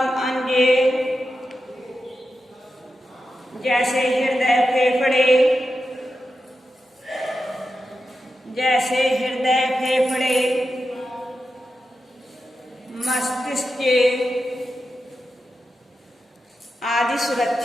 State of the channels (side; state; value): both; normal; correlation 0.90